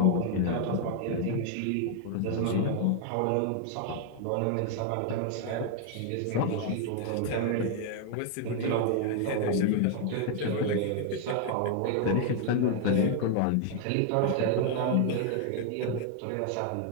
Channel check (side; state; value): both; different; correlation 0.00